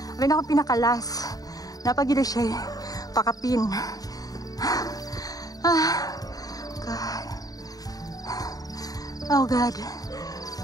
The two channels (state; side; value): late; right; 0.18 ms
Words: Abay na ako pinakalas. Napagila siya pakapin. God. Oh God.